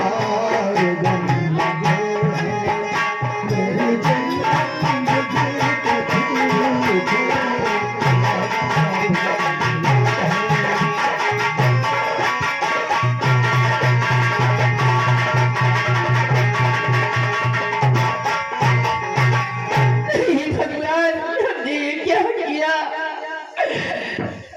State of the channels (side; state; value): both; identical; correlation 1.00